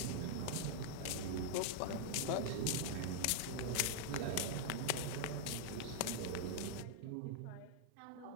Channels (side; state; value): both; different; correlation -0.01